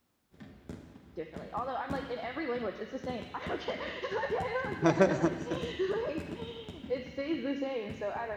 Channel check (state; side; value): identical; both; correlation 1.00